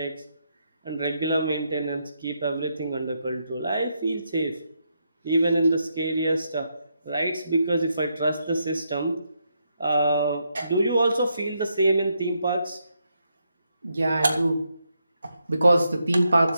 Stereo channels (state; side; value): inverted; both; correlation -0.80